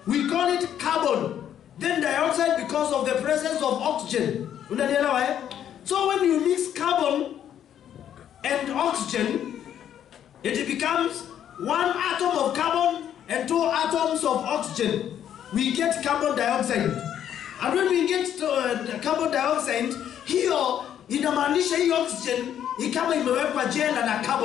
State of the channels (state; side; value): quieter; right; 10.0 dB